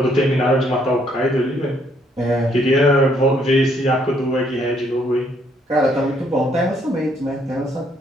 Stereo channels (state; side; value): normal; both; correlation 0.69